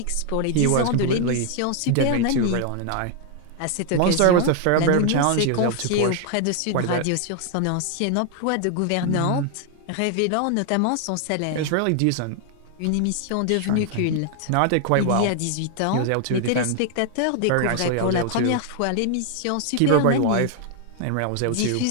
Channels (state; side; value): different; both; correlation 0.00